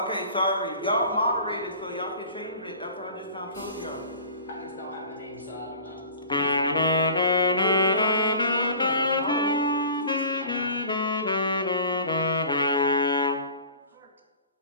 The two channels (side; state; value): both; inverted; correlation -0.42